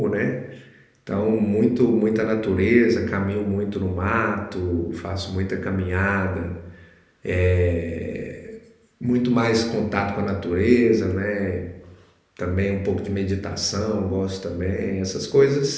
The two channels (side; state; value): both; identical; correlation 1.00